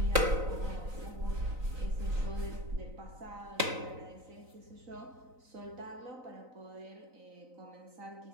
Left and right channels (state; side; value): late; left; 3.9 ms